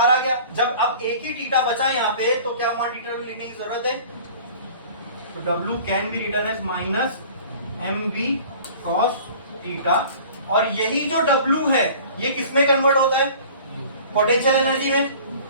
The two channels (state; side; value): inverted; both; correlation -0.46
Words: आ गया। जब अब एक ही थीटा बचा यहाँ पे, तो क्या वहां थीटा लिखने की जरूरत है? तो W can be written as minus M B cos theta, और यही जो W है ये किसमें कन्वर्ट होता है? पोटेंशियल एनर्जी में।